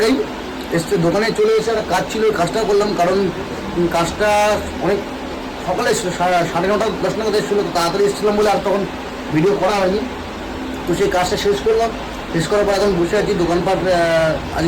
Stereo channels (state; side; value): identical; both; correlation 1.00